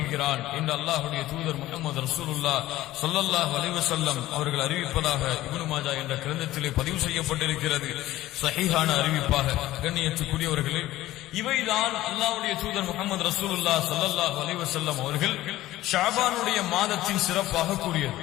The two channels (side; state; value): right; quieter; 15.7 dB